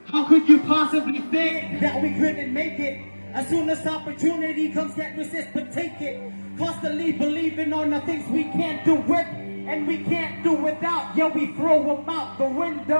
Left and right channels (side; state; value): both; inverted; correlation -1.00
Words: How could you possibly think that we couldn't make it? As soon as opportunity comes, can't resist but take it. Constantly believing on the things we can't do with and we can't do without. Yeah, we throw them out the